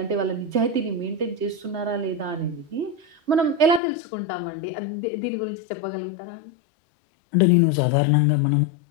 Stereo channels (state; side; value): drops out; right; at 3.8 s